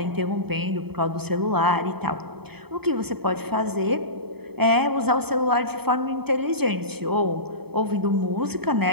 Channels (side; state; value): left; late; 0.97 ms